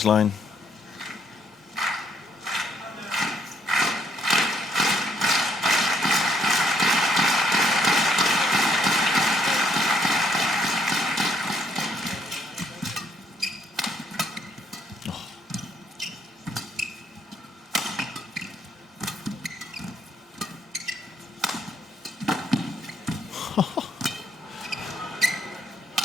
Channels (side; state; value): both; normal; correlation 0.70